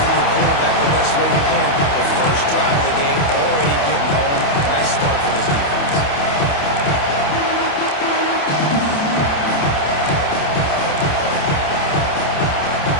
the quarterback the best way you can. The first drive of the game, already getting home. Nice start for this defense.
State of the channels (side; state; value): right; late; 28 ms